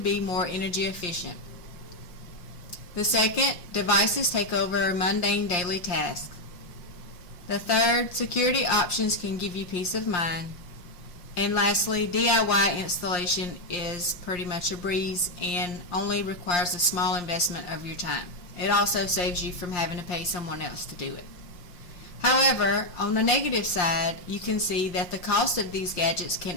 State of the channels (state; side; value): late; right; 5.6 ms